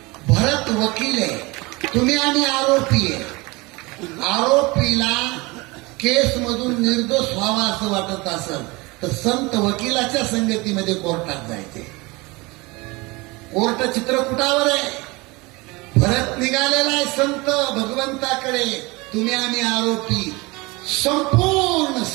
भरत वकील आहे, तुम्ही आणि आरोपी आहे. आरोपीला केस मधून निर्दोष व्हावा असं वाटत असेल तर संत वकिलाच्या संगतीमध्ये कोर्टात जायचे. कोर्ट चित्रकूटावर आहे. भरत निघालेला आहे संत भगवंताकडे, तुम्ही आम्ही आरोपी. संपूर्ण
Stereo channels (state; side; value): quieter; left; 24.3 dB